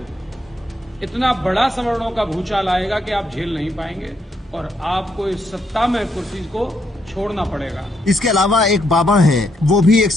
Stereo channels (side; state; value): both; normal; correlation 0.77